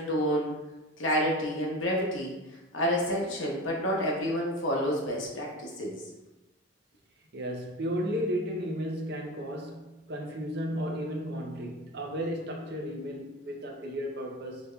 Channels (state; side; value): normal; both; correlation 0.29